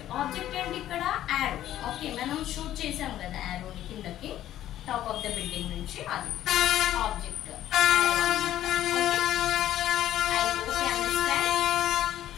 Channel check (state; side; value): quieter; right; 12.6 dB